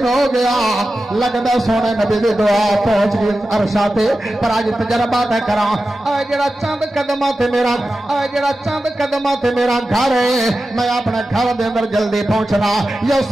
ہو گیا لگدا سونے نبی دی دعا پہنچ گئی عرشاں تے پر اج تجربہ تے کراں اے جڑا چند قدماں تے میرا اے جڑا چند قدماں تے میرا گھر ہے میں اپنے گھر دے اندر جلدی پہنچنا یا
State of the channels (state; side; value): normal; both; correlation 0.93